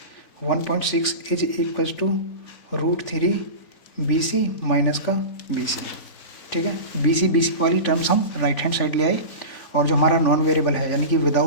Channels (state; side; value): late; right; 3.5 ms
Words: 1.6 is equals to √3 B C minus का बी सी। ठीक है, बी सी वाली टर्म्स हम राइट हैंड साइड ले आए, और जो हमारा नॉन वेरिएबल है यानी कि